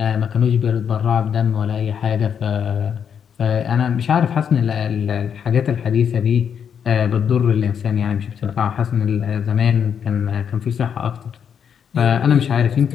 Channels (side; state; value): right; quieter; 7.7 dB